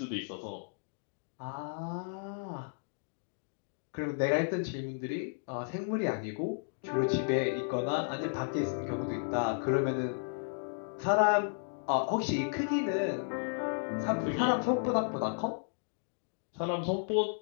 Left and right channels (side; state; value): right; silent; digital silence